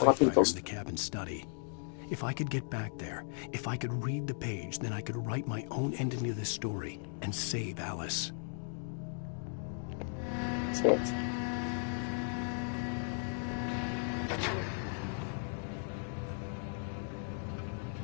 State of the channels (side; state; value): right; silent; 54 dB below the other